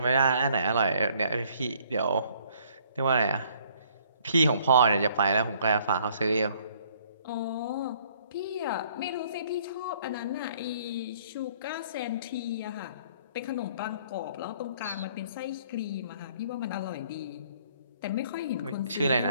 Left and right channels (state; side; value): inverted; both; correlation -0.61